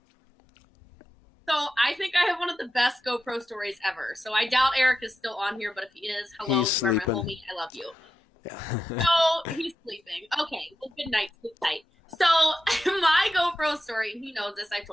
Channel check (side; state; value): both; normal; correlation 0.90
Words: So I think I have one of the best GoPro stories ever. So I doubt Eric is still on here, but if he is, hello, you're my homie. I love you. Yeah. So he's sleeping. Okay, well, good night, sleep tight. So my GoPro story, and he knows this, I've